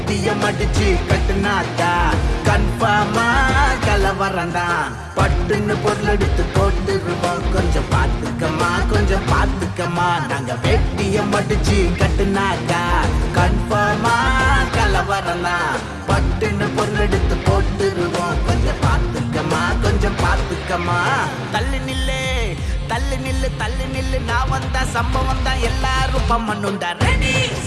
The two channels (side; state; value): both; identical; correlation 1.00